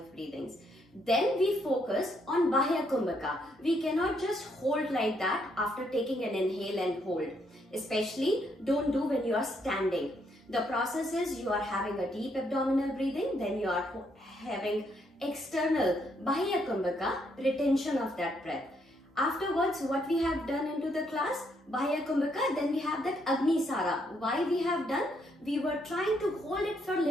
breathings. Then we focus on Bahya Kumbhaka. We cannot just hold like that after taking an inhale and hold. Especially don't do when you are standing. The process is you are having a deep abdominal breathing, then you are having external Bahya Kumbhaka, retention of that breath. Afterwards, what we have done into the class, Bahya Kumbhaka, then we have that Agni Sara. Why we have done? We were trying to hold it for a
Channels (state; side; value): normal; both; correlation 0.74